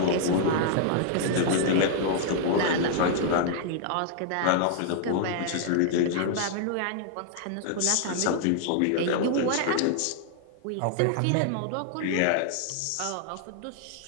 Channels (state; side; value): different; both; correlation -0.01